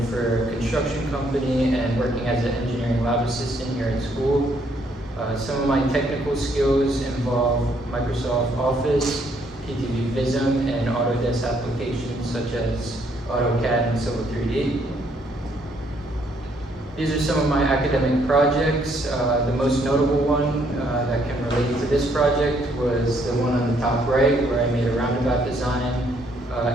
for a construction company and working as an engineering lab assistant here at school. Some of my technical skills involve Microsoft Office, PTV Visum, and Autodesk applications such as AutoCAD and Civil 3D. These are some of my academic projects. The most notable one that can relate to this project was the one on the top right where I made a roundabout design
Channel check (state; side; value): normal; both; correlation 0.69